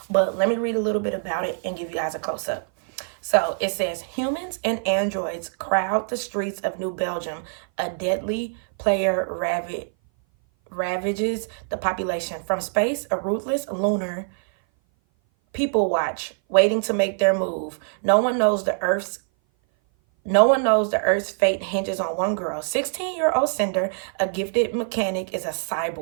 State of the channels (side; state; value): left; silent; 58 dB below the other